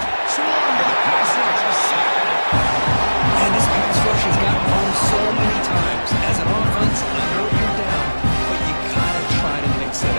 Swarm to the pass rush, a sack. And this pass rush has gotten home so many times. As an offense, I know you're down, but you gotta try to mix it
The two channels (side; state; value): both; inverted; correlation -1.00